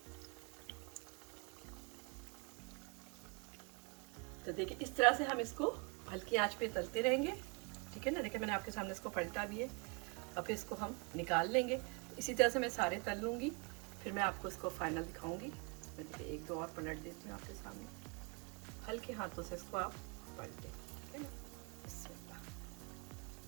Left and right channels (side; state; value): left; quieter; 32.5 dB